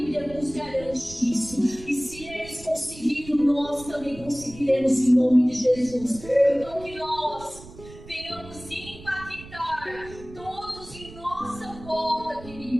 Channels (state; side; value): noise; right; rumble, 17 dB below the sound